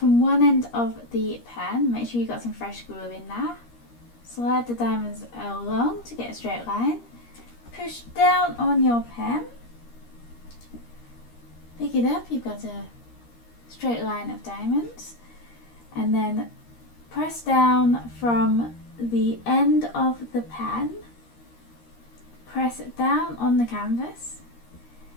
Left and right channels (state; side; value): late; right; 13 ms